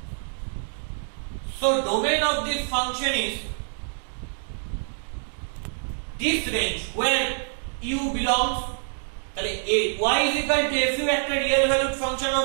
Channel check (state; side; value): silent; left; digital silence